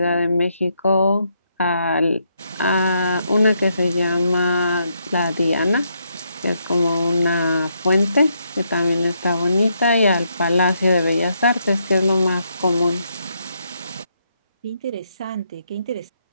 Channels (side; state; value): both; inverted; correlation -0.78